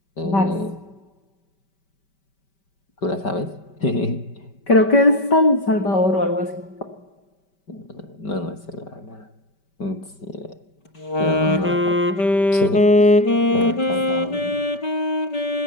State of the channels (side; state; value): right; late; 5.2 ms